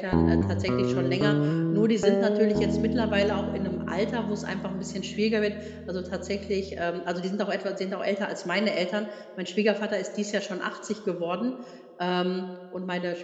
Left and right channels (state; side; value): identical; both; correlation 1.00